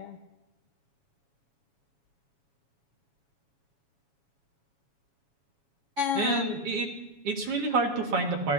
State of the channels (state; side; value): late; left; 7.2 ms